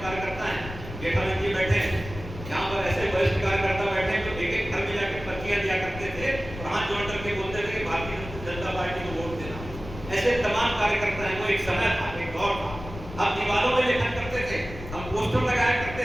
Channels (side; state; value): left; noise; rumble, 11 dB below the sound